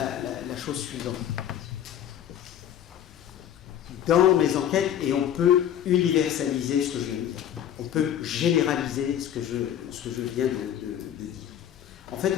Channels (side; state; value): right; quieter; 10.3 dB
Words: chose suivante. Dans mes enquêtes, et on peut universaliser ce que je viens de dire, on peut généraliser ce que je viens de dire. En fait,